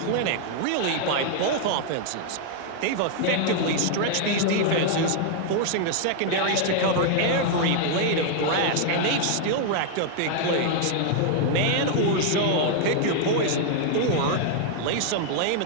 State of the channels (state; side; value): different; both; correlation 0.00